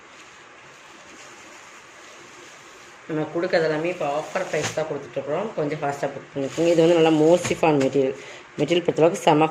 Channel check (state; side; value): identical; both; correlation 1.00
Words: நம்ம கொடுக்கறது எல்லாமே இப்போ ஆஃபர் ப்ரைஸ் தான் கொடுத்துட்ருக்குறோம். கொஞ்சம் ஃபாஸ்ட்டாக புக் பண்ணிக்கோங்க. இது வந்து நல்லா மோசிஃபான் மெட்டீரியல் பொறுத்தளவுக்கு செம்ம